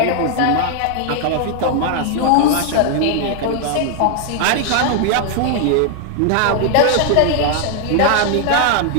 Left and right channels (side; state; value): both; different; correlation 0.00